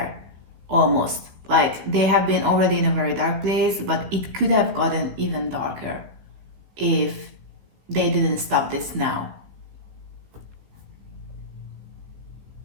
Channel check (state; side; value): late; left; 16 ms